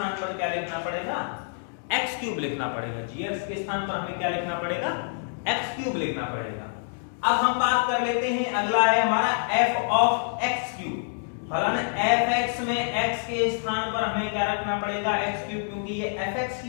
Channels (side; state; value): right; silent; digital silence